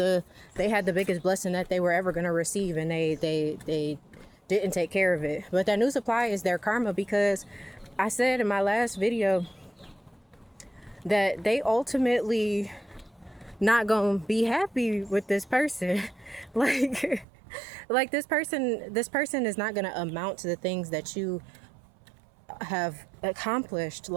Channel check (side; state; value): left; drops out; at 17.2 s